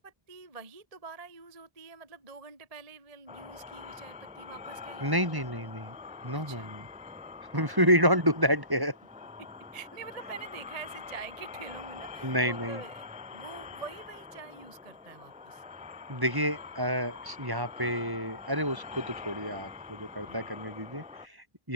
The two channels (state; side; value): late; left; 1.1 ms